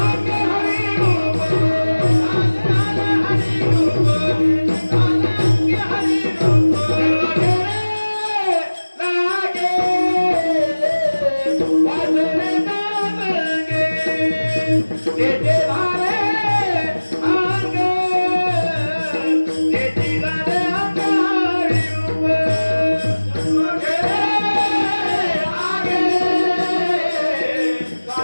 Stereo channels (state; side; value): inverted; both; correlation -1.00